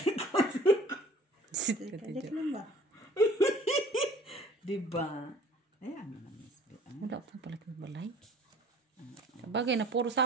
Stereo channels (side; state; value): both; normal; correlation 0.50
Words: Sit ka kalik dyan. lang ba? Diba? Ayan mo na, Miss B. Wala pa pala kang balay. Bagay na puro